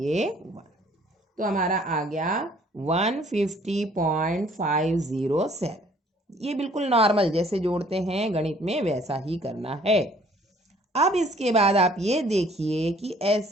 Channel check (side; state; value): both; normal; correlation 0.58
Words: 1, तो हमारा आ गया 150.507। ये बिल्कुल नॉर्मल जैसे जोड़ते हैं गणित में वैसा ही करना है। अब इसके बाद आप ये देखिए कि